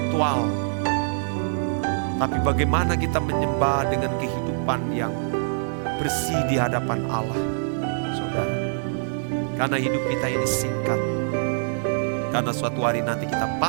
Tapi bagaimana kita menyembah dengan kehidupan yang bersih di hadapan Allah, saudara. Karena hidup kita ini singkat. Karena suatu hari nanti kita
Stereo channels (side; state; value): left; silent; digital silence